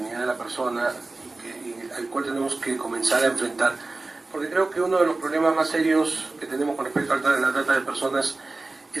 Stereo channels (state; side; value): quieter; left; 3.3 dB